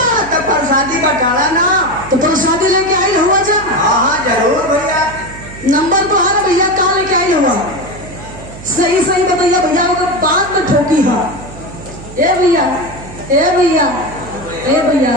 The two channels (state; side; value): noise; right; hum, 15 dB below the sound